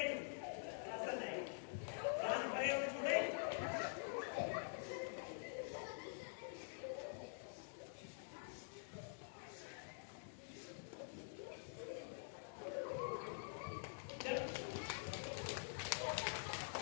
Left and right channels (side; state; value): right; silent; digital silence